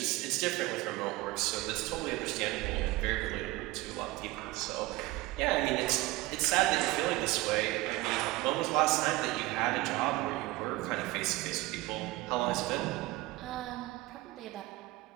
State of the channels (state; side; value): quieter; left; 19.4 dB